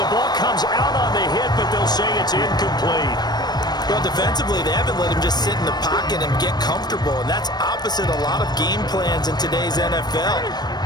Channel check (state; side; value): late; right; 0.20 ms